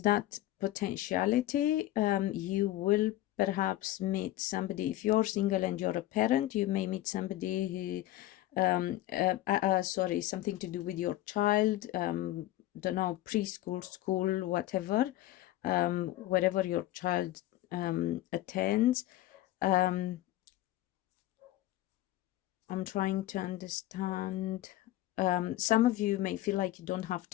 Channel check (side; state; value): right; quieter; 15.2 dB